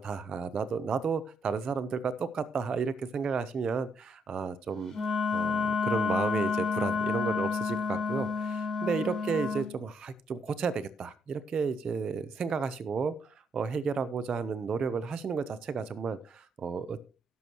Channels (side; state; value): both; normal; correlation 0.74